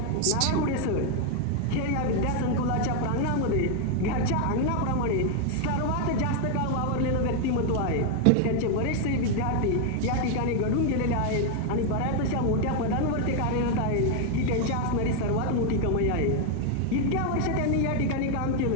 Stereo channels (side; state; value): both; different; correlation 0.01